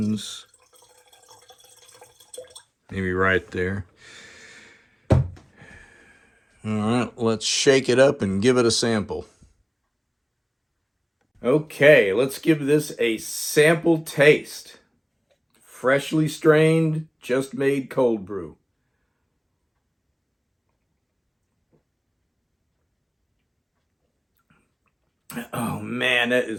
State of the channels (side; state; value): both; identical; correlation 1.00